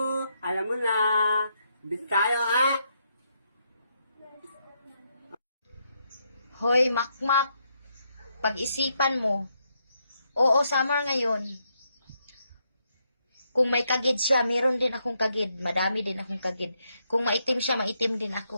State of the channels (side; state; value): both; inverted; correlation -0.78